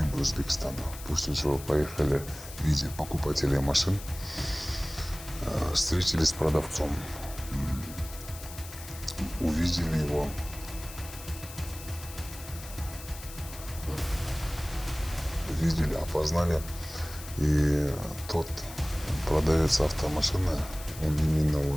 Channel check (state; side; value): noise; left; hiss, 14 dB below the sound